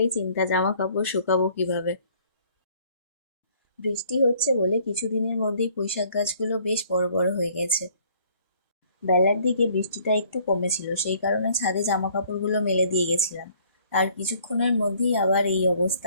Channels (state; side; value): inverted; both; correlation -0.60